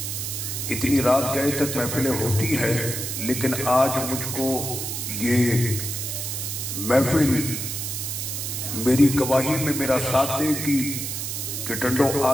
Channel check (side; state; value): right; noise; hiss, 4 dB below the sound